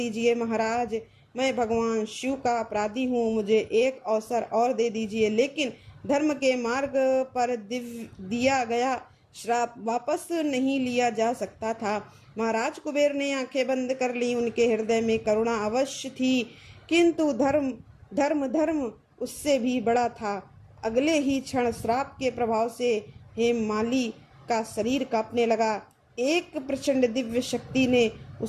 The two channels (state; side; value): identical; both; correlation 1.00